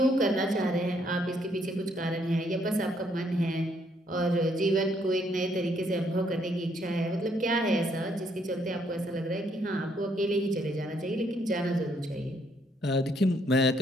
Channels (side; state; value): both; normal; correlation 0.70